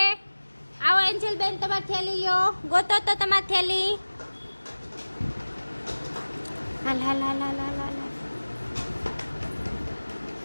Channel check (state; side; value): inverted; both; correlation -1.00